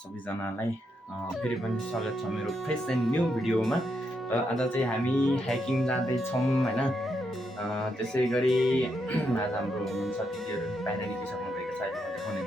फेरि पनि स्वागत छ मेरो फ्रेस एन्ड न्यू भिडियोमा। र आज चाहिँ हामी हाइकिङ जाँदैछौँ होइन। त्यसै गरी आज हाम्रो हुनुहुन्छ दिदीहरू बाहिर निस्किसक्नु भएको छ, अहिले म देखाउने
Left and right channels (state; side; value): normal; both; correlation 0.80